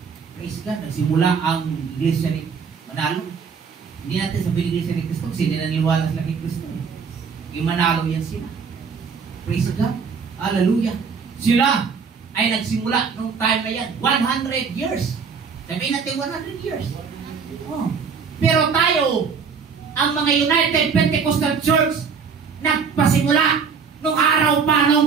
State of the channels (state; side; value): quieter; left; 5.9 dB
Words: Praise God, nagsimula ang iglesia ni Manalo. Hindi natin sabihin iglesia ni Kristo kasi hindi naniniwala sila kay Kristo. Yung Manalo yan sila. Praise God. Hallelujah. Sila ay nagsimula nung time na yan. 100 years. Sabihin natin 100 years. Oh. Pero tayo, ang mga United Pentecostal Church, nagpasimula nung araw pa